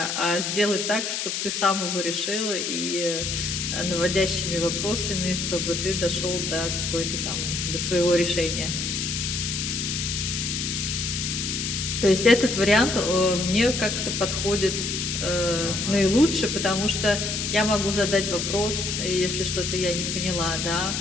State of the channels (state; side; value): noise; left; hiss, 2 dB below the sound